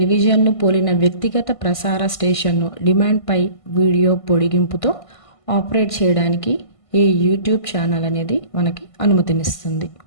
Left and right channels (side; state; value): right; late; 1.5 ms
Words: పోలిన వ్యక్తిగత ప్రసార స్టేషన్ను డిమాండ్పై వీడియో పొడిగింపుతో ఆపరేట్ చేయడానికి ఈ యూట్యూబ్ ఛానల్ అనేది మనకి అనుమతినిస్తుంది.